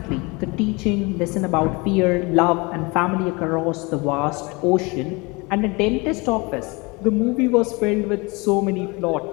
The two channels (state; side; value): quieter; right; 26.8 dB